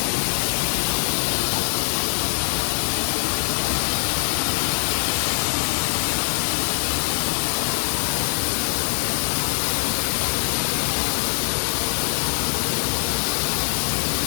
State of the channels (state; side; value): silent; right; digital silence